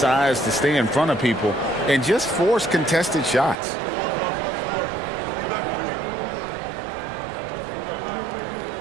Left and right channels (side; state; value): left; drops out; at 3.6 s